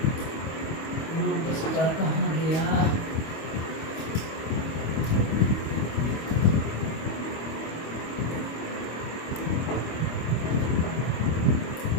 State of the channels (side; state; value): right; late; 25 ms